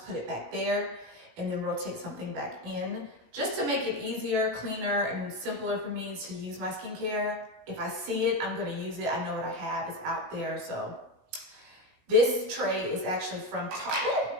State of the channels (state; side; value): late; left; 18 ms